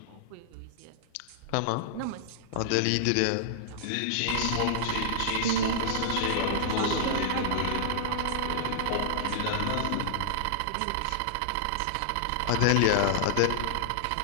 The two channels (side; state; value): both; different; correlation -0.01